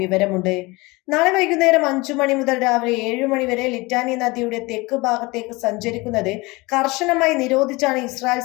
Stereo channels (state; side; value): quieter; right; 23.7 dB